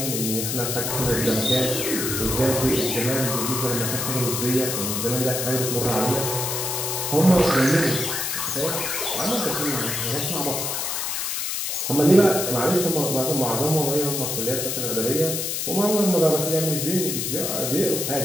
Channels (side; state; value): left; noise; hiss, 2 dB below the sound